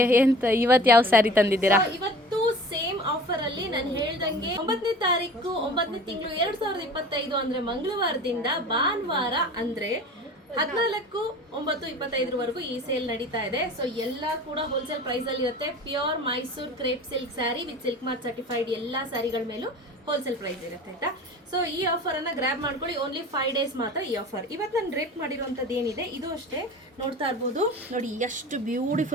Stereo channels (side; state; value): both; normal; correlation 0.40